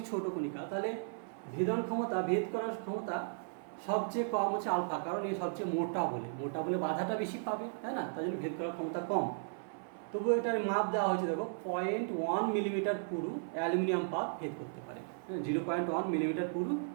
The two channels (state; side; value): silent; left; 54 dB below the other